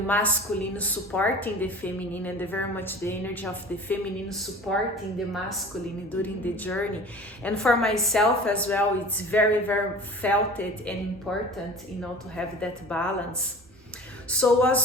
supporting the feminine, and very much the energy of the feminine supporting the masculine during the journey. And for myself as well, it's very, very felt it and important, you know, to have that balance. So it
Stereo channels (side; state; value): both; normal; correlation 0.40